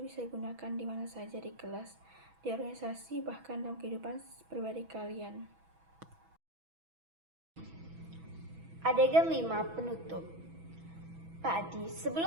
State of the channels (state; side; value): late; left; 6.1 ms